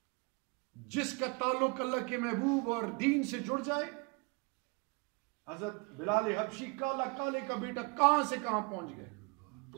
جس کا تعلق اللہ کے محبوب اور دین سے جڑ جائے، حضرت بلال حبشی کالا کالے کا بیٹا کہاں سے کہاں پہنچ گئے،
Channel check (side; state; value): left; quieter; 32.3 dB